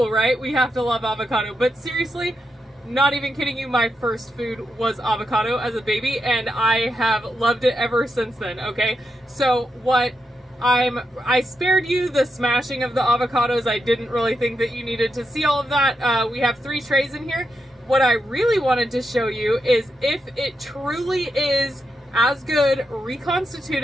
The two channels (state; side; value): normal; both; correlation 0.84